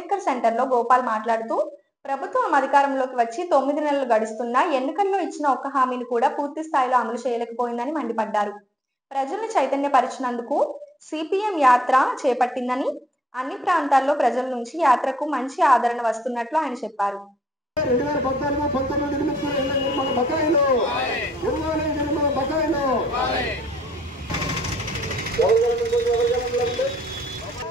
సెంటర్లో గోపాల్ మాట్లాడుతూ ప్రభుత్వం అధికారంలోకి వచ్చి 9 నెలలు గడుస్తున్నా ఎన్నికల్లో ఇచ్చిన ఒక్క హామీని కూడా పూర్తి స్థాయిలో అమలు చేయలేకపోయిందని మండిపడ్డారు. ప్రజల్ని చైతన్యపరిచినందుకు సిపిఎం యాత్ర చేపట్టిందని, అన్ని ప్రాంతాల్లో ప్రజల నుంచి యాత్రకు మంచి ఆదరణ వస్తున్నట్లు ఆయన చెప్పారు. 2014-19 బకాయిలు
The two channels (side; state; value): both; normal; correlation 0.74